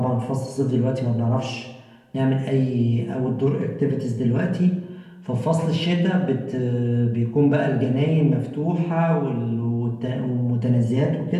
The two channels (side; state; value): both; identical; correlation 1.00